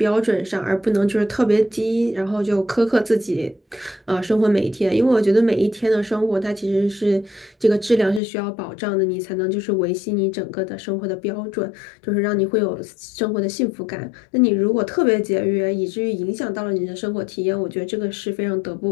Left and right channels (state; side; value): drops out; right; at 8.2 s